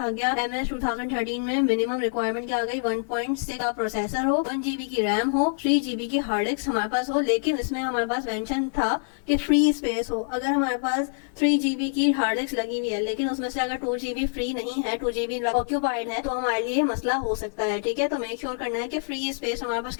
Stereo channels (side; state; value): right; silent; 61 dB below the other